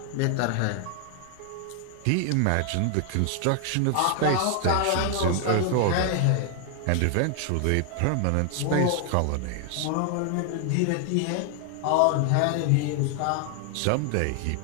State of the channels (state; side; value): different; both; correlation 0.00